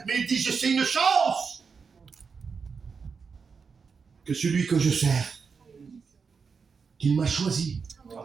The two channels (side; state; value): left; quieter; 5.5 dB